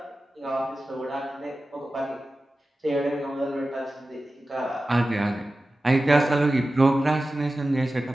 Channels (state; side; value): normal; both; correlation 0.95